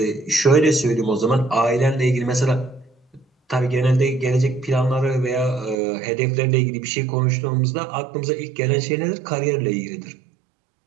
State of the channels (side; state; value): left; drops out; at 5.8 s